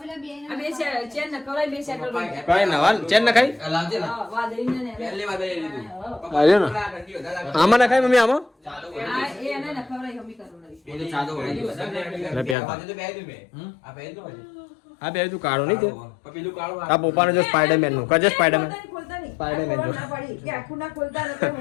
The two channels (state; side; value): drops out; right; at 12.6 s